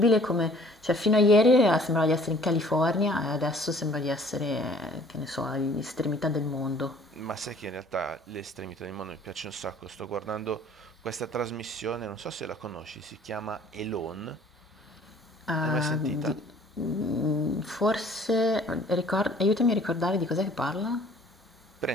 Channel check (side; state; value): both; normal; correlation 0.54